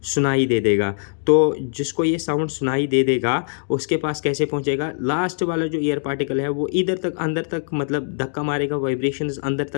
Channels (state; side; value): silent; right; digital silence